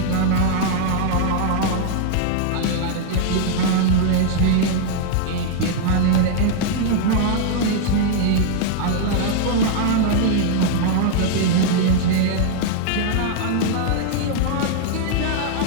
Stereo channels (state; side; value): different; both; correlation 0.00